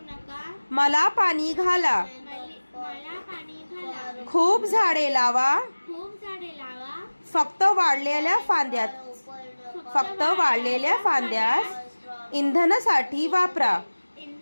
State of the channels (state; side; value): inverted; both; correlation -1.00